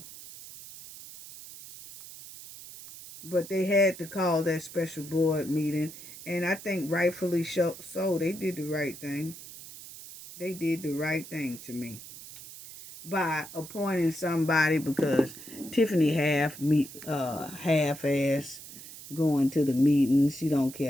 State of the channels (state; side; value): noise; right; hiss, 15 dB below the sound